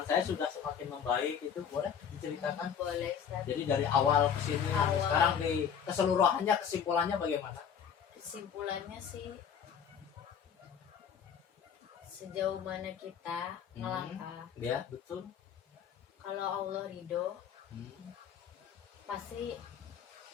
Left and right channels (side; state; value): right; quieter; 7.9 dB